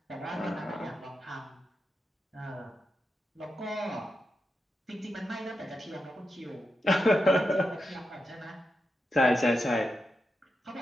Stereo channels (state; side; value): normal; both; correlation 0.88